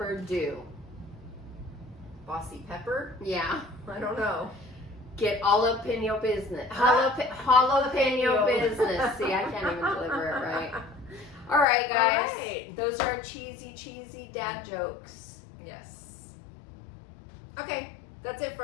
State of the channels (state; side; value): drops out; right; at 11.7 s